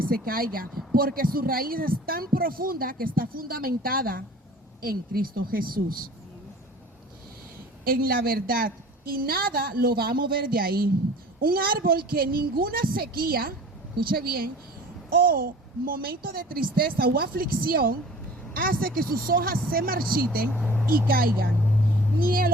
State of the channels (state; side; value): normal; both; correlation 0.44